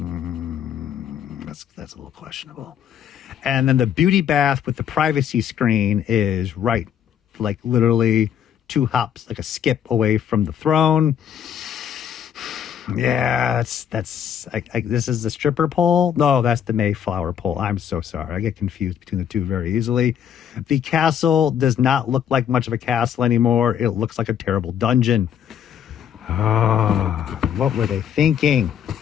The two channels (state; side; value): quieter; right; 9.0 dB